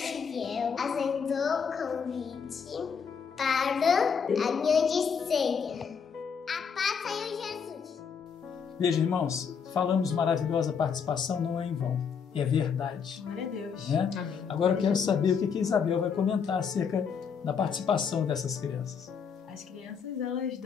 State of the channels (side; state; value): right; quieter; 6.5 dB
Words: aceitou o convite para a grande ceia. A paz do Senhor Jesus. Veja, irmãos, falamos maravilhosa participação, não é em vão. É verdade. Glória a Deus. Né? Agora eu quero saber o que a Isabel vai comentar acerca da participação dessas crianças. As crianças, elas